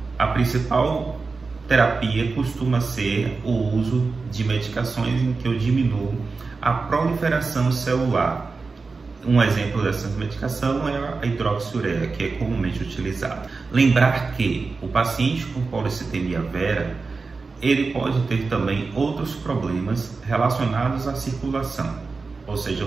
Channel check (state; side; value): quieter; left; 4.2 dB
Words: a principal terapia costuma ser o uso de medicações em que eu diminuo a proliferação celular. Um exemplo dessa medicação é a hidroxiureia, que é comumente utilizada. Lembrar que o paciente com policitemia vera, ele pode ter também outros problemas relacionados à circulação. Ou seja,